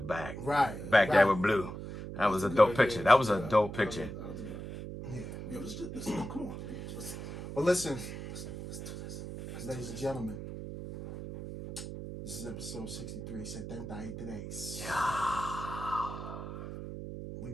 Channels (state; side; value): noise; right; hum, 8 dB below the sound